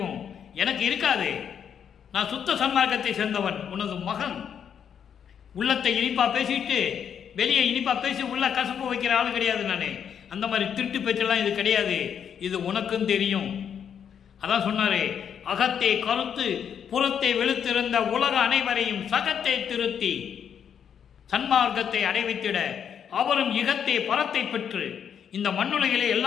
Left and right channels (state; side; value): quieter; right; 8.1 dB